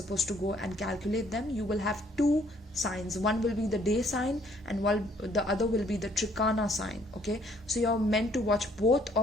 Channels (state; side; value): normal; both; correlation 0.64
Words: to go and calculate them. You will have two signs. One will be the day sign and the other will be the Trikana sign. Okay, so you're meant to watch both